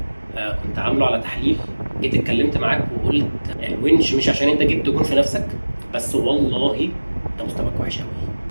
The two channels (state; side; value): inverted; both; correlation -1.00